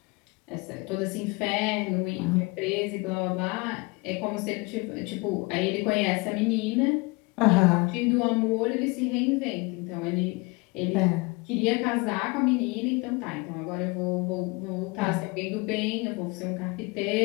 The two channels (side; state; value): right; quieter; 26.5 dB